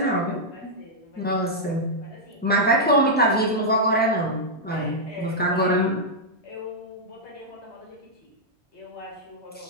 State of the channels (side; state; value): both; normal; correlation -0.07